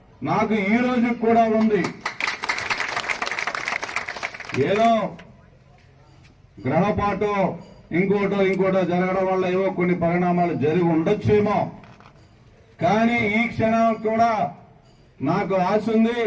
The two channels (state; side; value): identical; both; correlation 1.00